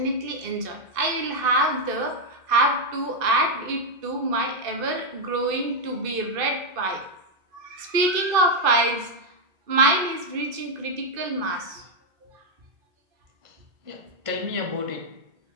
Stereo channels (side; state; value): left; late; 2.5 ms